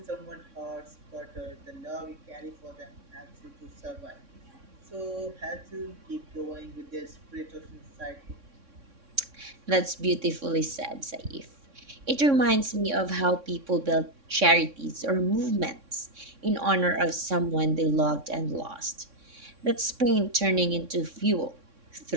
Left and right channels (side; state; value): left; late; 3.6 ms